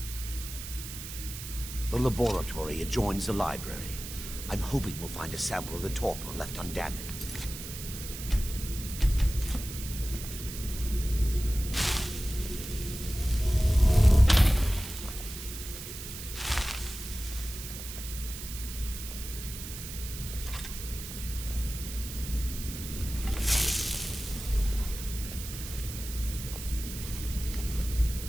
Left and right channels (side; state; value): right; noise; hiss, 10 dB below the sound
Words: The laboratory adjoins the library. I'm hoping we'll find a sample of the torpor left undamaged.